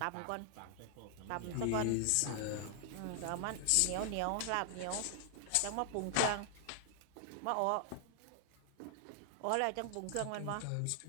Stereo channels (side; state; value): both; different; correlation 0.00